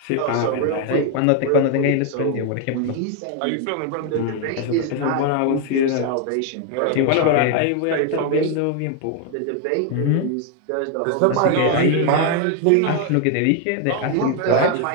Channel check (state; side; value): different; both; correlation 0.01